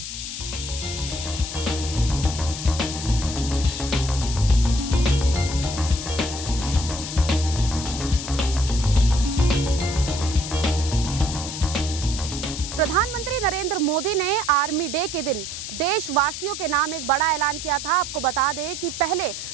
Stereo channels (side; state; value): left; noise; hiss, 7 dB below the sound